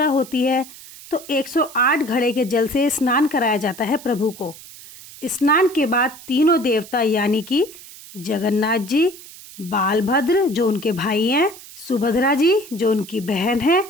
होती है तो 108 घड़े के जल से स्नान कराया जाता है प्रभु को। स्नान के बाद तीनों देवता यानी कि जगन्नाथ जी, बालभद्र जो उनके भाई हैं, सुभद्रा जी जो उनकी बहन है,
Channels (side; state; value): right; noise; hiss, 18 dB below the sound